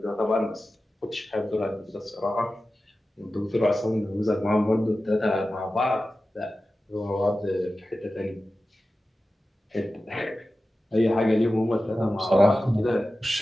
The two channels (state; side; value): normal; both; correlation 0.94